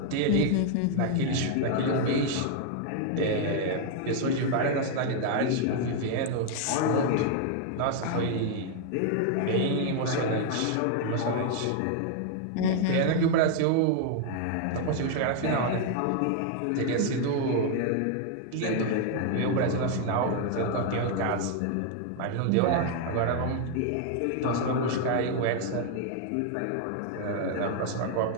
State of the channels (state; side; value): different; both; correlation 0.00